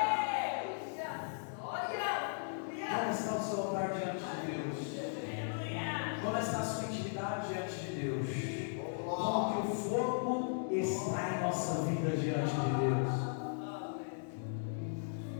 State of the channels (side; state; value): right; silent; digital silence